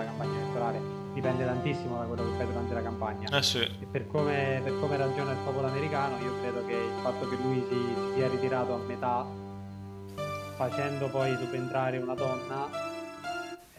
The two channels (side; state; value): both; identical; correlation 1.00